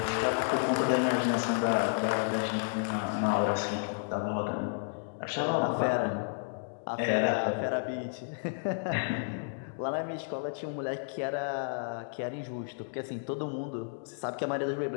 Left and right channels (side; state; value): right; silent; digital silence